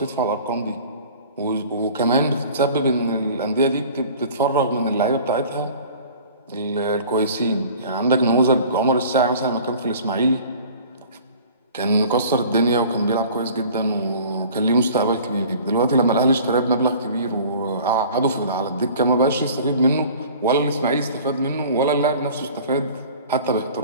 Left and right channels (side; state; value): both; inverted; correlation -0.46